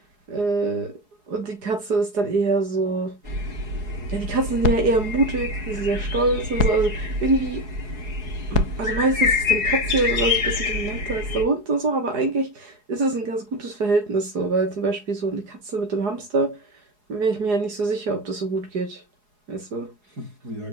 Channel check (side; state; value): left; late; 4.8 ms